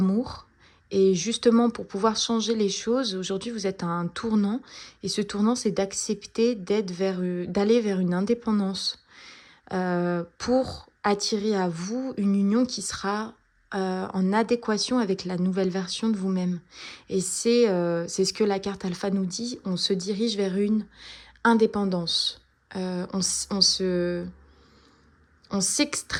Et justement, pour pouvoir changer les choses, aujourd'hui, vous êtes à un tournant. Et ce tournant, c'est d'accepter d'aller vers une indépendance pour attirer à vous une union qui sera en adéquation avec la nouvelle version de vous-même. Et c'est ce que la carte alpha nous dit, on se dirige vers une indépendance. On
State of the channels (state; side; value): identical; both; correlation 1.00